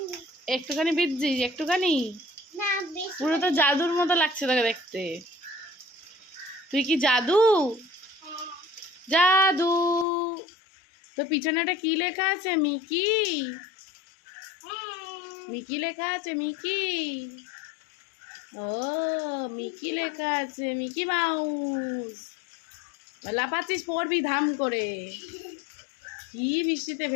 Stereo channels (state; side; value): drops out; right; at 10.1 s